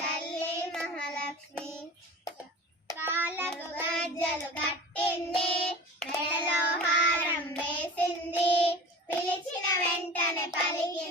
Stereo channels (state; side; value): normal; both; correlation 0.36